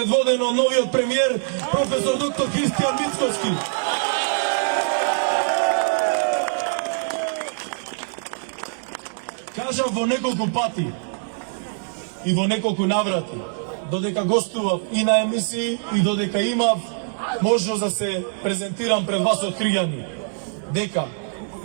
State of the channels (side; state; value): left; silent; digital silence